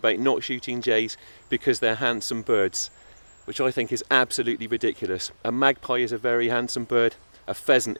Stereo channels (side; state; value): both; inverted; correlation -1.00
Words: not shooting jays because they're handsome birds, which I think is absolutely ridiculous. A magpie is a very handsome bird, a pheasant